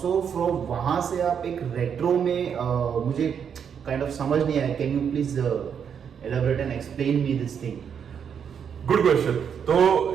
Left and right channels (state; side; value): quieter; left; 7.6 dB